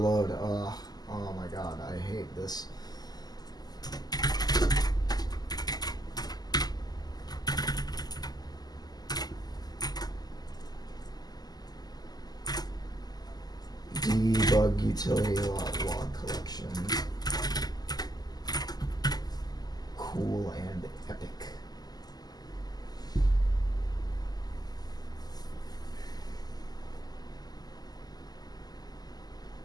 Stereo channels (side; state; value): right; late; 0.19 ms